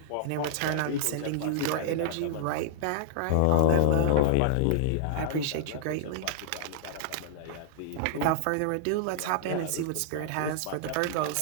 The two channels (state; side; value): different; both; correlation -0.01